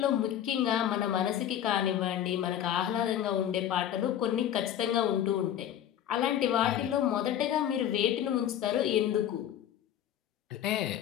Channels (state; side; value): quieter; right; 10.7 dB